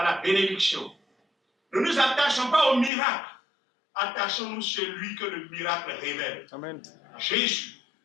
la bénédiction. Ne nous attachons pas au miracle. Attachons-nous celui que le miracle révèle. Amen. Jésus,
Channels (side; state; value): right; drops out; at 2.9 s